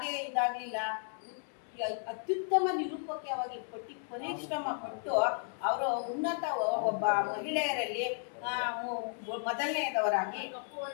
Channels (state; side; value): silent; right; 55 dB below the other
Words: ಇದಾಗ್ಲಿಲ್ಲ. ಅತ್ಯುತ್ತಮ ನಿರೂಪಕವಾಗಿ ಪರಿಶ್ರಮ ಪಟ್ಟು ಅವರು ಉನ್ನತ ಒಬ್ಬ ಮಹಿಳೆಯರಲ್ಲಿ ಮೊದಲನೆಯದವರಾಗಿ